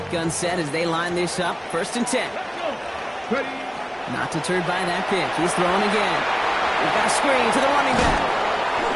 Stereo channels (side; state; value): both; identical; correlation 1.00